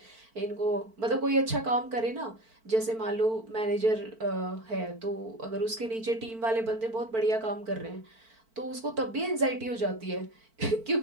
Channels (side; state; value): left; late; 4.5 ms